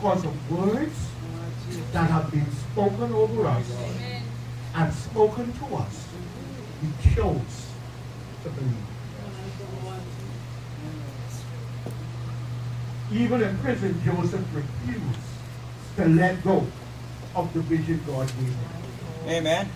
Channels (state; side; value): identical; both; correlation 1.00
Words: of words that have been spoken over us and spoken to us. We chose to believe. Even in prison, Joseph refused to let go of the vision God gave him. Amen.